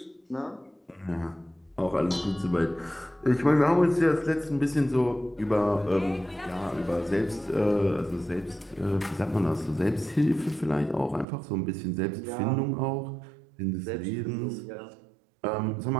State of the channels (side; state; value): left; drops out; at 11.2 s